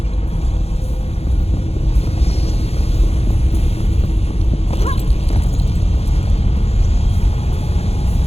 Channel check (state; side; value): late; right; 0.30 ms